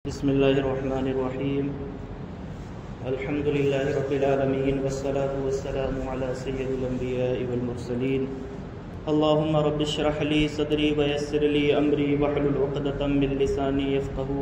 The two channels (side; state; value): both; identical; correlation 1.00